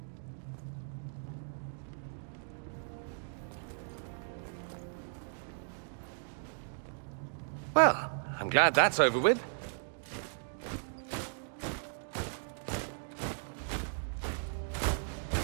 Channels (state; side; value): silent; left; digital silence